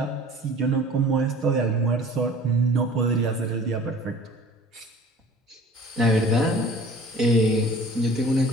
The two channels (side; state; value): both; normal; correlation 0.46